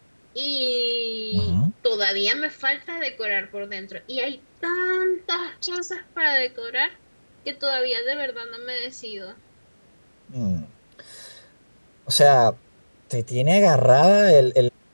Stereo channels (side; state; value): both; inverted; correlation -1.00